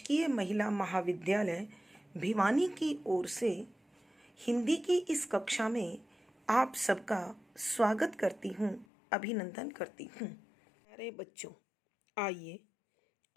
महिला महाविद्यालय भिवानी की ओर से हिंदी की इस कक्षा में आप सबका स्वागत करती हूँ, अभिनंदन करती हूँ। प्यारे बच्चों, आइए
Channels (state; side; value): drops out; right; at 8.8 s